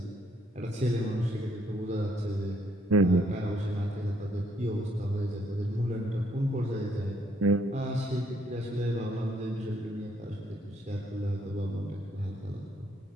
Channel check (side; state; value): both; normal; correlation 0.69